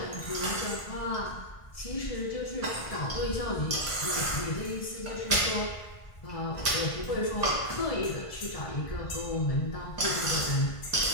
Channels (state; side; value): late; right; 1.5 ms